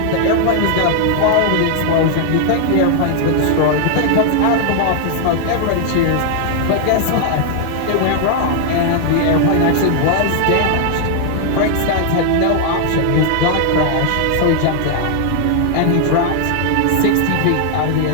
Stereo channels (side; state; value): both; different; correlation 0.00